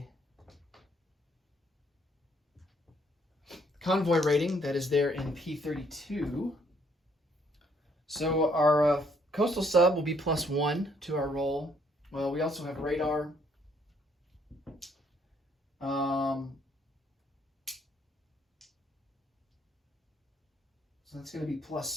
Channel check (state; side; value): normal; both; correlation 0.68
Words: convoy rating that is there in P32. So our coastal sub will be +1 to our roll. Well, we also have radar. So that's going to be